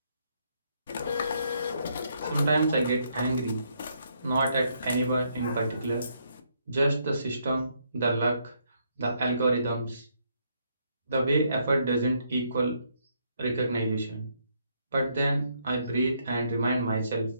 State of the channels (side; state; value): both; inverted; correlation -0.73